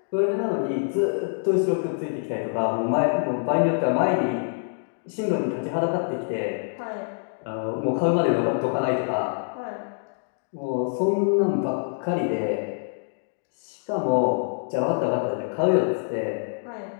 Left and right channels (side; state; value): right; silent; digital silence